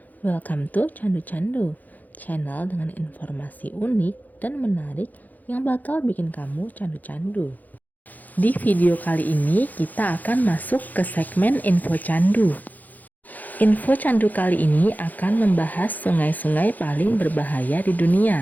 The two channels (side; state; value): right; late; 0.082 ms